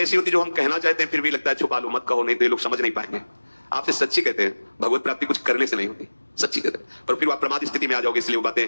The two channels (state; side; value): inverted; both; correlation -1.00